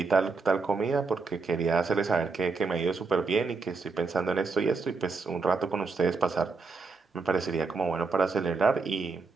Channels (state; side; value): quieter; left; 4.3 dB